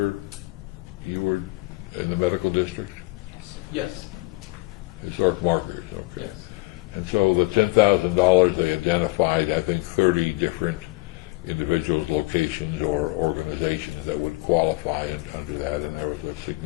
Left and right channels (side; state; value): right; quieter; 22.6 dB